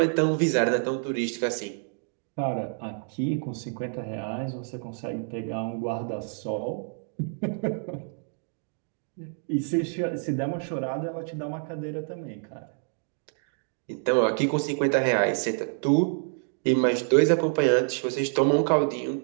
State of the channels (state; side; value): silent; left; 60 dB below the other